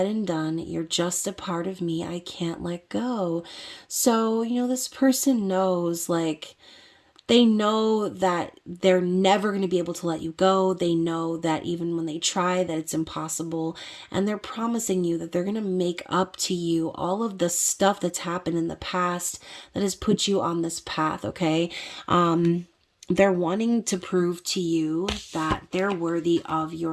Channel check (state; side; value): identical; both; correlation 1.00